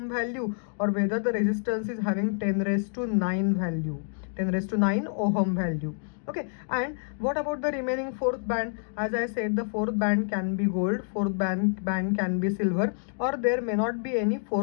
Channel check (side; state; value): right; silent; 60 dB below the other